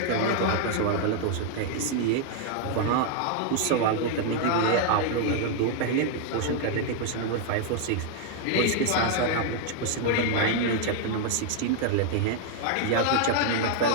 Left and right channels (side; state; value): both; different; correlation 0.00